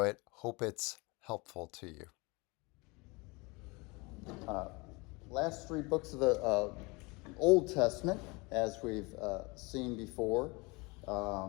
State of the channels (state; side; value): quieter; right; 26.6 dB